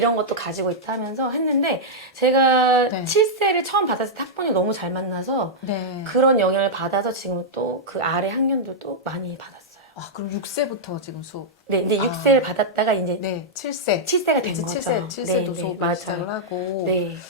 것도 가지고 있다 하면서 했는데 제가 네. 7세를 처음 받았을 때 학번이 너무 잘 만나서 네. 그런 영향을 받아서 지금 또 그 아래 학년들도 많이 받았어요. 아, 그럼 6세부터 지금 수업. 네, 이제 6세를 받았다가 이제 네, 7세. 7세가 된 이제 거죠. 7세도 네, 수업 맞아요. 시작을 하고. 네.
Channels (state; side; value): normal; both; correlation -0.07